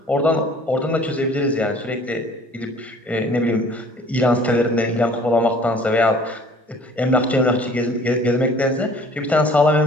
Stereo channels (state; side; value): normal; both; correlation 0.51